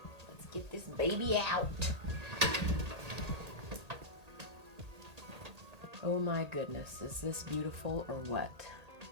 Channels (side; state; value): left; late; 1.8 ms